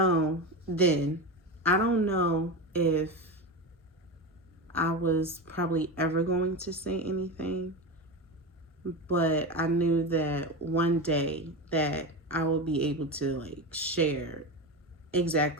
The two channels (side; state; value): both; normal; correlation 0.21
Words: then. I don't know if I was probably ever going to say anything, but I knew that one day that I will be able to like share